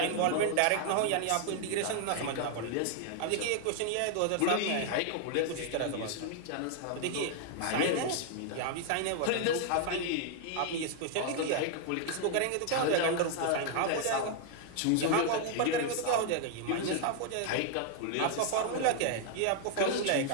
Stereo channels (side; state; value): both; different; correlation 0.00